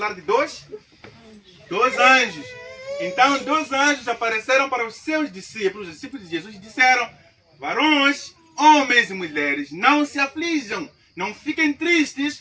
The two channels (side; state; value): both; identical; correlation 1.00